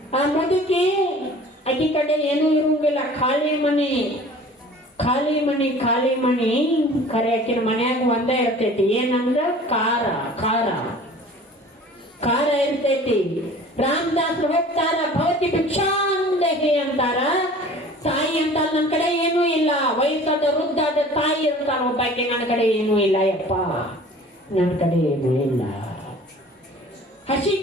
ಆ ಮುದುಕಿ ಅಕ್ಕಿ ಕಡೆ ಏನೂ ಇರುವಂಗಿಲ್ಲ, ಖಾಲಿ ಮನಿ. ಖರೆ ಆಕಿನ ಮನ್ಯಾಗ ಒಂದೇ ಇರ್ತೈತಿ. ಏನಂದ್ರ ಖಾರ ಇರ್ತೈತಿ. ರಾಮದಾಸರು ಹೋಗ್ತಾರ, ಭವತಿ ಭಿಕ್ಷಾಂದೇಹಿ ಅಂತಾರ. ತಾಯಿ ಅಂತ ನನ್ನ ಕಡೆ ಏನೂ ಇಲ್ಲ. ವಯಸ್ಸಾದ ವೃದ್ಧಾದ ತಾಯಿ ಅಂತಾರ ಒಬ್ಬಾಕಿ, ನನ್ನ ಕಡೆ ಏನೂ ಇಲ್ಲ ಯಪ್ಪ, ನನ್ನ ಕಡೆ ಏನೂ ಇಲ್ಲ. ಹಸಿ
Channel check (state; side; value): normal; both; correlation 0.46